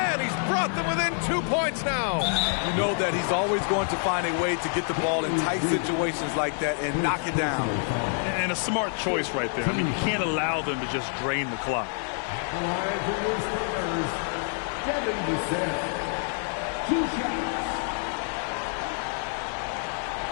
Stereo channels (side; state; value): right; silent; 55 dB below the other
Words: he's brought them within 2 points now. You know that he's always going to find a way to get the ball in tight situations like that and knock it down. And a smart choice right there. I mean, you can't allow them to just drain the clock. Devin Vassell. 2 shots.